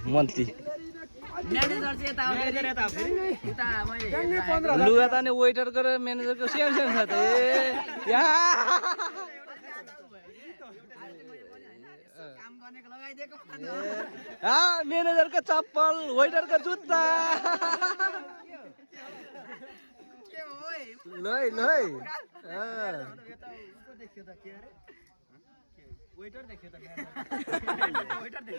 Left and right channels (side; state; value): both; inverted; correlation -1.00